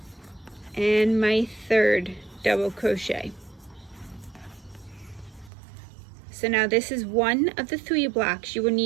and my 3rd double crochet. So now this is 1 of the 3 blocks you will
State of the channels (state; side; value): drops out; left; at 5.5 s